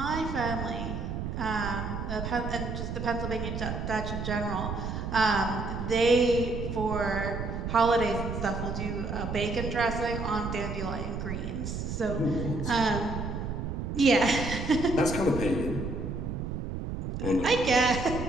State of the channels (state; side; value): noise; right; rumble, 4 dB below the sound